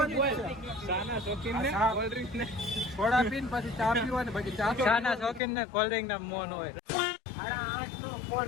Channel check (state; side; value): drops out; right; at 5.4 s